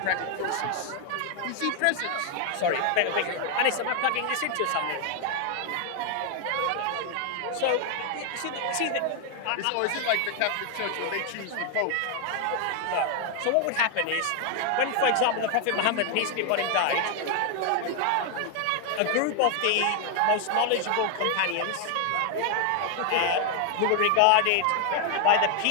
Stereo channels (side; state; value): both; different; correlation 0.00